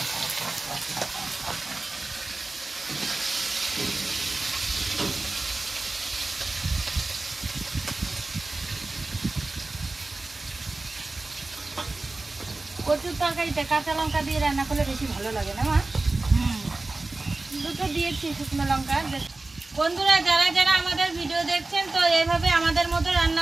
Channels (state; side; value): quieter; left; 3.2 dB